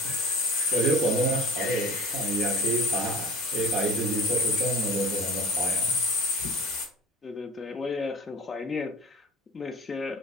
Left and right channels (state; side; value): normal; both; correlation 0.40